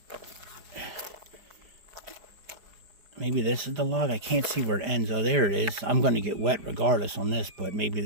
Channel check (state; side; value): late; left; 5.1 ms